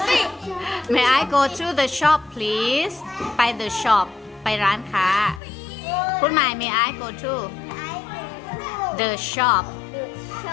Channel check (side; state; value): right; drops out; at 5.4 s